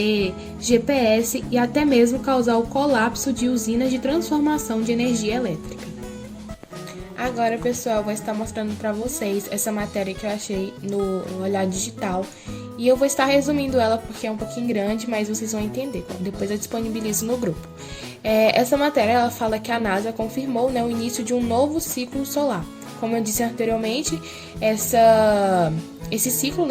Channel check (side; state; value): both; identical; correlation 1.00